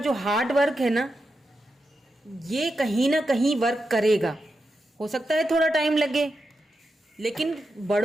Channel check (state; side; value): normal; both; correlation 0.88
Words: हार्ड वर्क है ना, ये कहीं ना कहीं वर्क करेगा। हो सकता है थोड़ा टाइम लगे, लेकिन